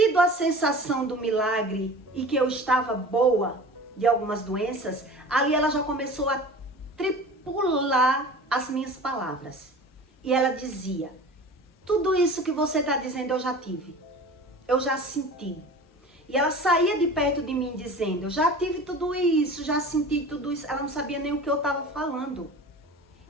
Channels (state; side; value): normal; both; correlation 0.38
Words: a sensação do milagre e que eu estava boa de algumas doenças, ali ela já começou a tripular as minhas palavras. E ela dizia, tudo isso que você está dizendo eu já tive, eu já senti. E ela saía de perto de mim dizendo, eu já tive tudo isso, já senti tudo isso. Ela não sabia nem o que eu estava falando.